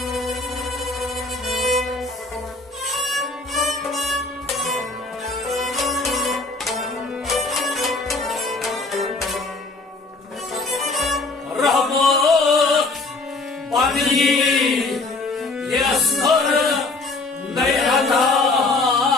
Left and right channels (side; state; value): right; quieter; 3.4 dB